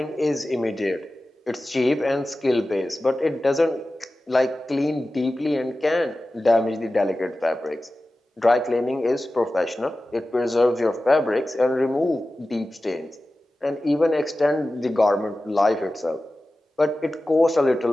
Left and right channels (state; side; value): normal; both; correlation 0.95